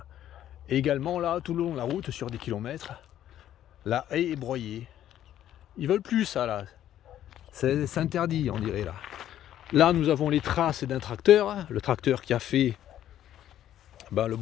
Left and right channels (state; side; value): quieter; right; 11.6 dB